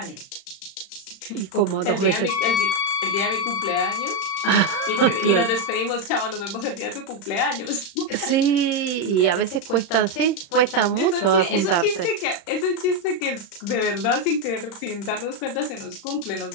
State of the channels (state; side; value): late; right; 36 ms